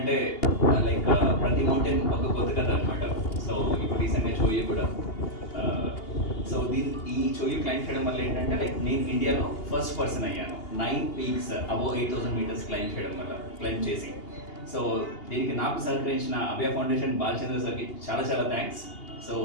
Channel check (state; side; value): late; right; 2.8 ms